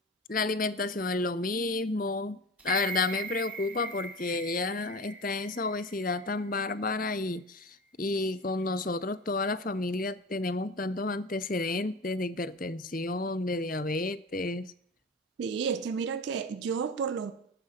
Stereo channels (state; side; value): normal; both; correlation 0.31